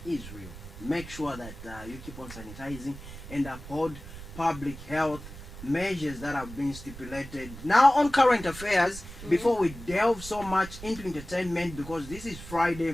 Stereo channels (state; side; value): noise; right; rumble, 13 dB below the sound